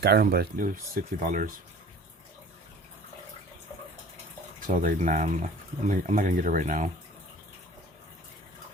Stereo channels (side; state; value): both; normal; correlation 0.46